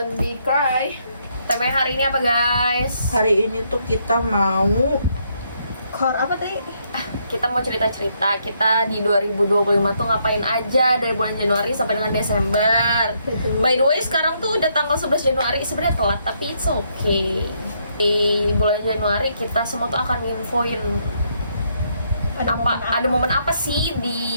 be cry. Tema hari ini apa guys? Hari ini tuh kita mau Kor apa tadi? Kita mau cerita-cerita kita di 2025 tuh ngapain aja dari bulan Januari sampai dengan Desember. Betul. By the way sekarang tuh udah tanggal 11 Januari, sebenarnya telat tapi it's okay. Di bulan Januari kita semua tuh akan nginfoin ada momen apa sih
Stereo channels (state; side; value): inverted; both; correlation -0.74